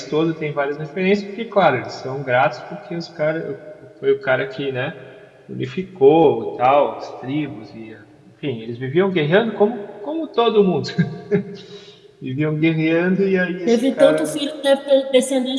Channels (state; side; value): identical; both; correlation 1.00